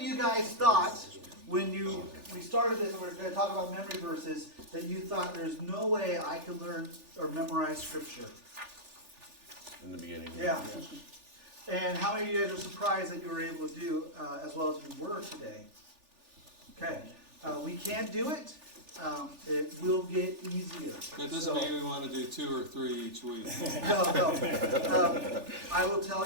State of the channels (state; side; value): late; left; 3.4 ms